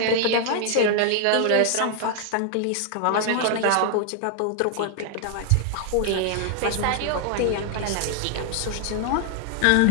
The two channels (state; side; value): different; both; correlation 0.00